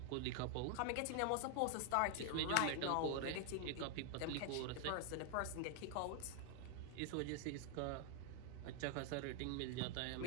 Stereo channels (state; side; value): different; both; correlation 0.00